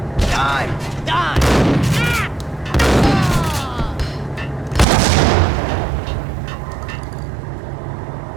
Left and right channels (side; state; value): left; drops out; at 4.9 s